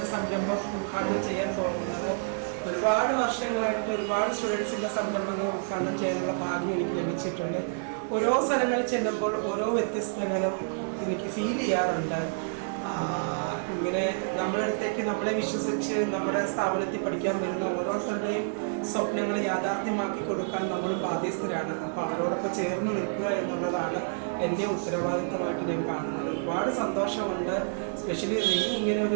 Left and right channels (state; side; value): silent; left; 59 dB below the other